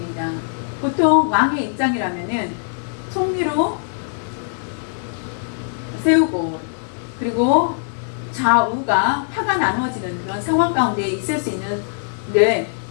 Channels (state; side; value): silent; right; digital silence